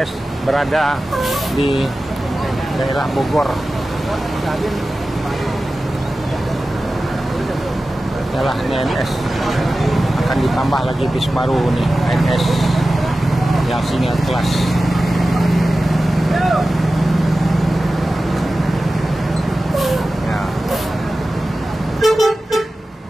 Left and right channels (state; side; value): normal; both; correlation 0.95